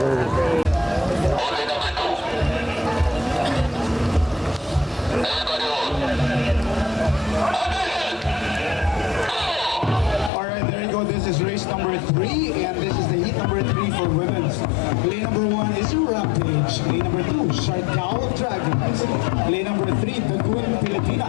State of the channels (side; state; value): right; drops out; at 10.3 s